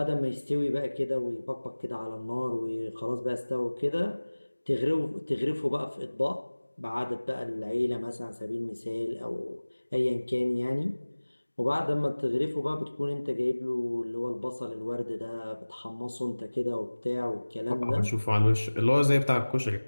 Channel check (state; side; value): inverted; both; correlation -1.00